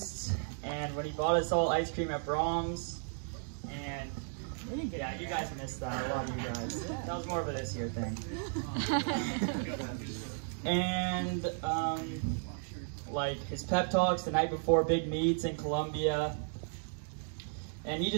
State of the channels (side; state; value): left; silent; digital silence